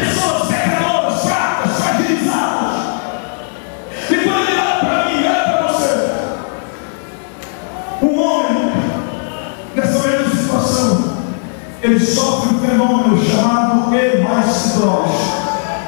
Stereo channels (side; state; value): right; silent; digital silence